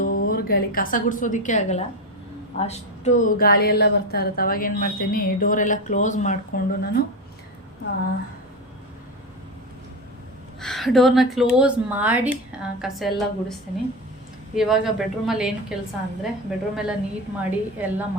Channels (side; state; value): both; normal; correlation 0.18